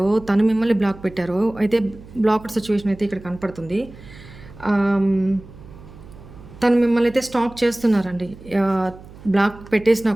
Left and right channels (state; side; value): noise; right; hum, 19 dB below the sound